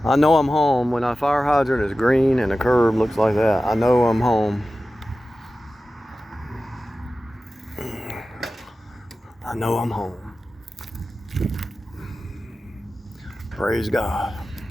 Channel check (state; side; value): normal; both; correlation 0.95